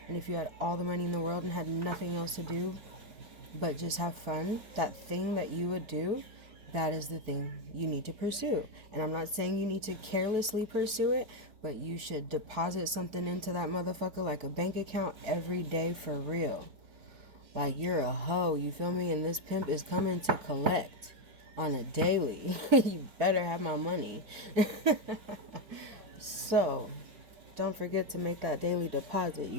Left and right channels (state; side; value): late; left; 4.9 ms